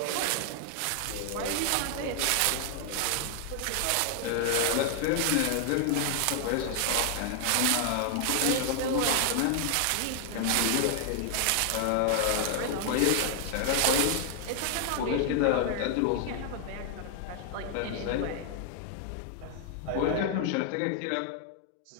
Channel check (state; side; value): different; both; correlation 0.00